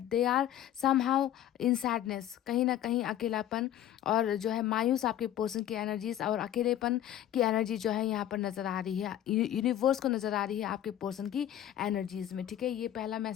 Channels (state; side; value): quieter; right; 11.6 dB